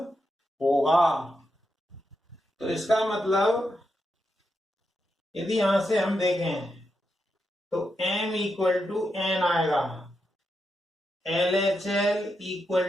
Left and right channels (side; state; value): both; normal; correlation 0.85